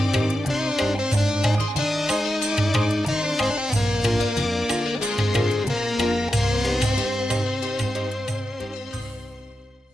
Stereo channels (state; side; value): normal; both; correlation 0.89